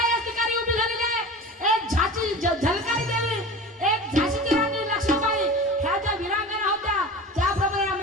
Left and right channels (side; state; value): both; normal; correlation 0.34